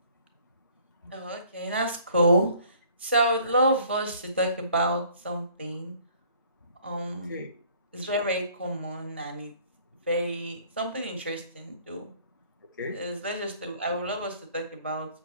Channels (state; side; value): inverted; both; correlation -0.57